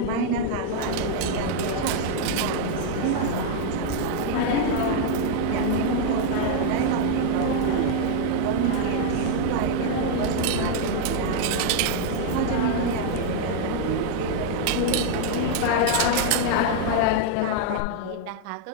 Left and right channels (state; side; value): different; both; correlation 0.00